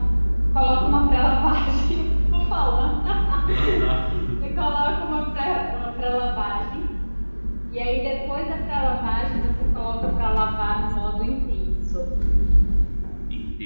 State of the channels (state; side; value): inverted; both; correlation -1.00